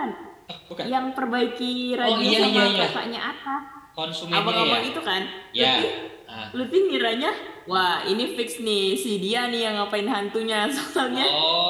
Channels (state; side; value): identical; both; correlation 1.00